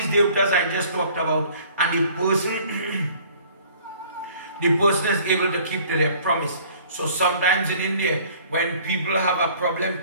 Devtas I just talked about, and the person is able to keep to their promise. So sometimes in India, when people have a problem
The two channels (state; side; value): inverted; both; correlation -0.53